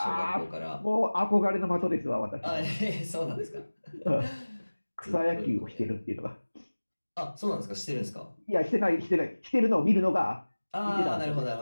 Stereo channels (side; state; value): both; inverted; correlation -1.00